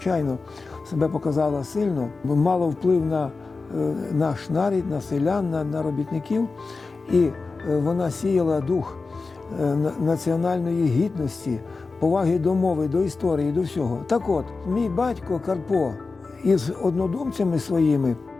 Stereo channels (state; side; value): quieter; right; 4.1 dB